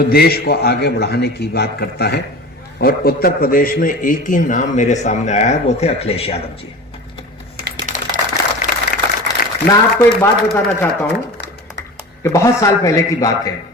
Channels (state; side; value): normal; both; correlation 0.34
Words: देश को आगे बढ़ाने की बात करता है। और उत्तर प्रदेश में एक ही नाम मेरे सामने आया है, वो थे अखिलेश यादव जी। मैं आपको एक बात बताना चाहता हूं कि बहुत साल पहले की बात है।